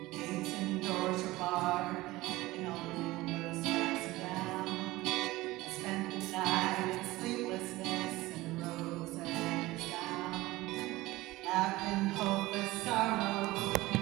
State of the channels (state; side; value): quieter; left; 19.0 dB